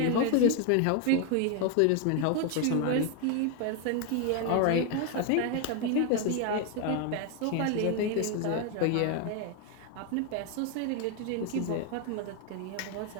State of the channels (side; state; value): both; different; correlation 0.01